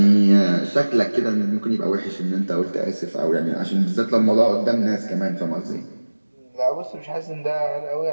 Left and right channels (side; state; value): both; inverted; correlation -1.00